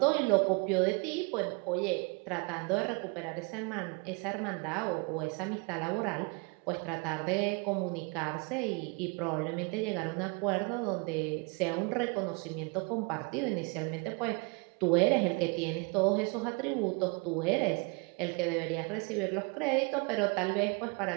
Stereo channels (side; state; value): left; quieter; 31.8 dB